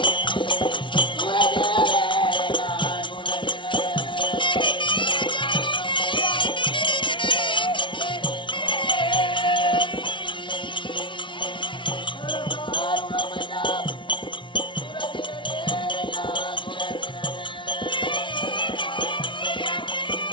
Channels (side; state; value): right; late; 0.24 ms